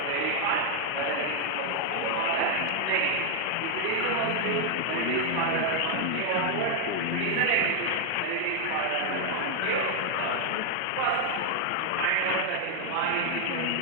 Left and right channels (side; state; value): both; different; correlation 0.00